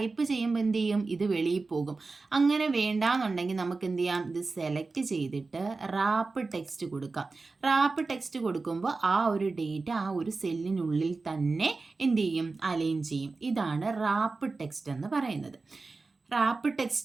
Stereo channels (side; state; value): left; quieter; 3.9 dB